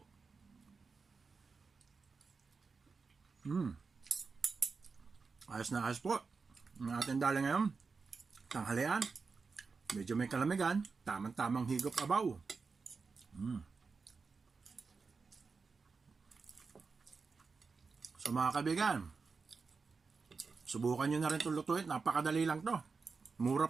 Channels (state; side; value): quieter; left; 4.7 dB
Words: Ayos na ayos po. Ang ating dali ngayon, tanghalian. Medyo may kalamigan. Tamang-tamang higop abaw. So mga kaibigan, subukan nyo na rin itong lutuin. Napakadali lang to. Mura